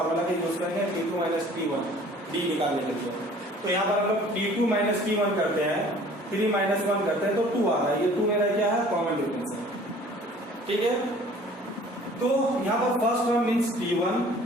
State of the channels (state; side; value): normal; both; correlation 0.51